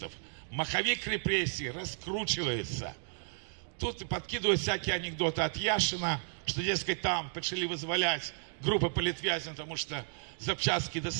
Маховик репрессий раскручивается. Тут подкидывают всякие анекдоты от Яшина, что, дескать, там почали вызволять группы палітвязнів, потому что запчастки до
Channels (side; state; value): left; silent; 56 dB below the other